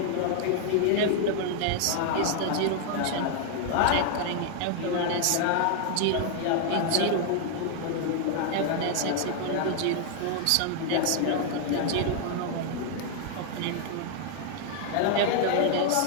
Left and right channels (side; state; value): both; different; correlation 0.00